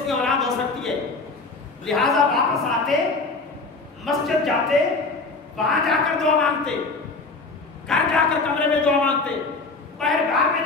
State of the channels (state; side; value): quieter; right; 3.7 dB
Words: کی اولاد ہو سکتی ہے، لہٰذا واپس آتے، مسجد جاتے، وہاں جا کر دعا مانگتے، گھر جا کر کمرے میں دعا مانگتے، پہرگاہ میں